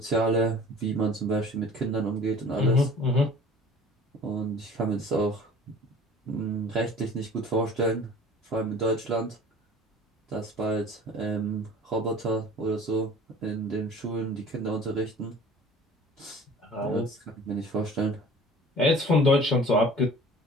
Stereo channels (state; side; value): normal; both; correlation 0.46